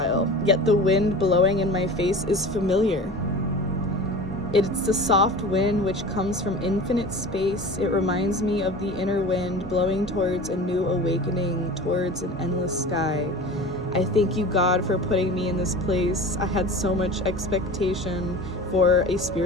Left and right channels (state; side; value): normal; both; correlation 0.36